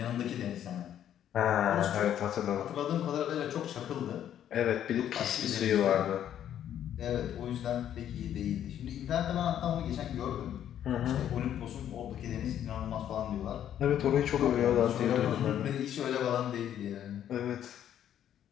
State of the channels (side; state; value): right; quieter; 10.4 dB